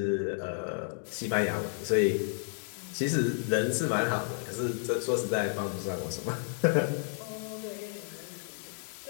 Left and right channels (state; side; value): silent; right; digital silence